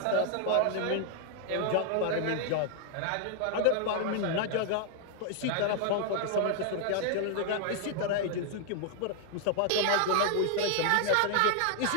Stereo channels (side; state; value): both; different; correlation 0.00